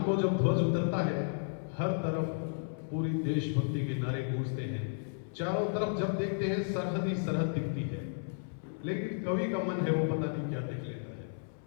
को जब ध्वज उतरता है, हर तरफ पूरी देशभक्ति के नारे गूंजते हैं, चारों तरफ जब देखते हैं सरहद ही सरहद दिखती है, लेकिन कवि का मन है वो पता नहीं क्या देख लेता है।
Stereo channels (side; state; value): right; silent; 56 dB below the other